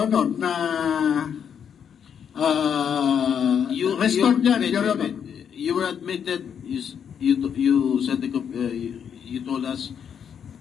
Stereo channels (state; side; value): quieter; right; 7.9 dB